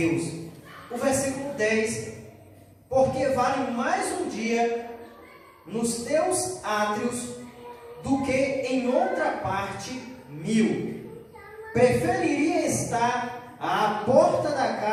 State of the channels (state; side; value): identical; both; correlation 1.00